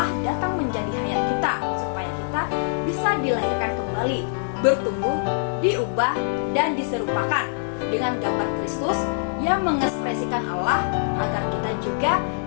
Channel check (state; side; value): silent; right; digital silence